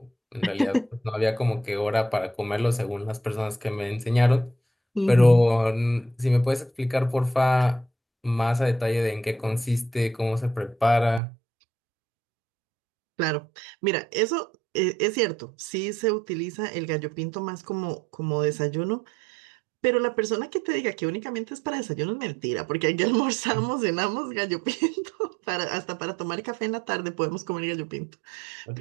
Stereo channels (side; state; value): left; drops out; at 11.2 s